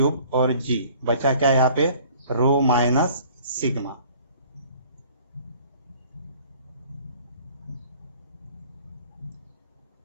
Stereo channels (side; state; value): both; inverted; correlation -0.52